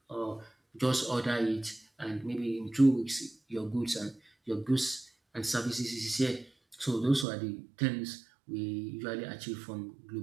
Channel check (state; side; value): drops out; left; at 7.2 s